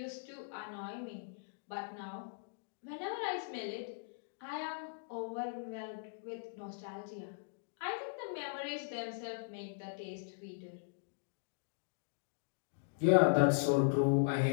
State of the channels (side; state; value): right; silent; digital silence